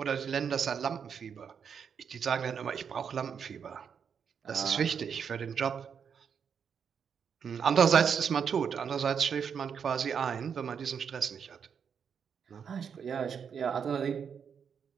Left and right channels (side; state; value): left; quieter; 7.1 dB